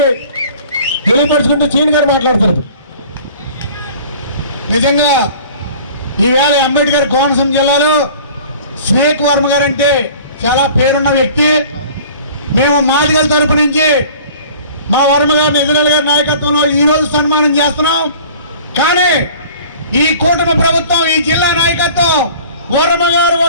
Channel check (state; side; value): inverted; both; correlation -0.46